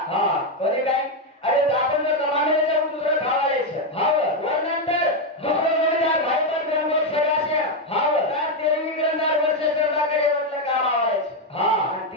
कोणी काय अरे आपण जर कमाने जाऊन दुसरं खावायचं हाव वरनंतर दुसरं जोडीदार भाई पण गंगोत सगळ्याचे हाव तर तेरवी ग्रंथार वर्ष सरदाकडे म्हटलं काम आवायचं हा आणि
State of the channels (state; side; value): normal; both; correlation 0.05